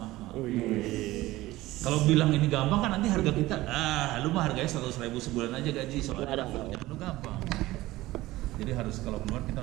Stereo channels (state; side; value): quieter; left; 17.7 dB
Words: Kalau bilang ini gampang kan nanti harga kita, lu mah harganya 100.000 sebulan aja gaji, soalnya lu gampang. Jadi harus kalau keluar